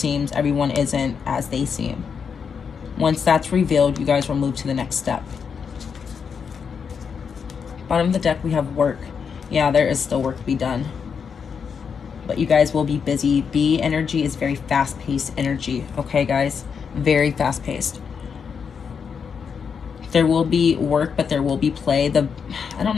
Everyone isn't as they seem. Once that's revealed, you guys will move to the next step. Bottom of the deck, we have work. Yeah, there is still work to be done. But you guys will be busy. B energy is very fast-paced energy. Okay, guys? Very fast-paced. There will be work, but there will be play. I don't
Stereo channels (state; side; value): quieter; right; 6.4 dB